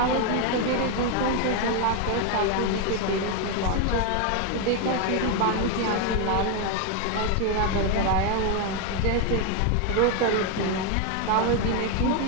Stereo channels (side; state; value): both; different; correlation 0.01